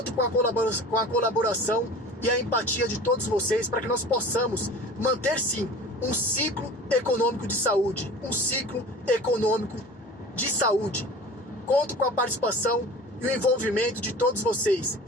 com a colaboração e a empatia de todos vocês para que nós possamos manter sim um ciclo econômico de saúde, um ciclo econômico de saúde. Conto com a participação e o envolvimento de todos vocês,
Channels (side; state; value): both; normal; correlation 0.40